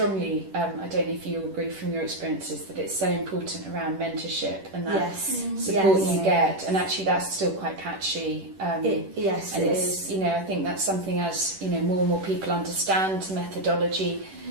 I don't know if you agree from your experiences, that it's so important around mentorship and that support you get, and actually that's still quite patchy. It is. I think that's something as more and more people understand methodology.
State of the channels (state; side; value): late; left; 10 ms